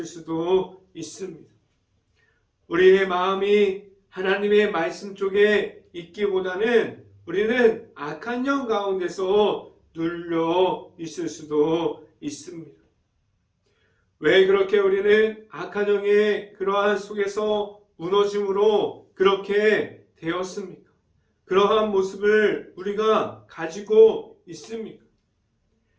수도 있습니다. 우리의 마음이 하나님의 말씀 쪽에 있기보다는 우리는 악한 영 가운데서 눌려 있을 수도 있습니다. 왜 그렇게 우리는 악한 영의 그러한 속에서 무너짐으로 그렇게 되었습니까? 그러한 모습을 우리가 가지고 있습니까?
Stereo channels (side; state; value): both; identical; correlation 1.00